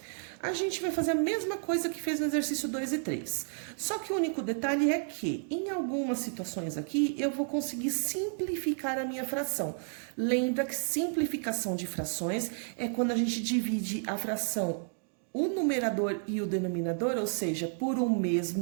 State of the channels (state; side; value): silent; left; 57 dB below the other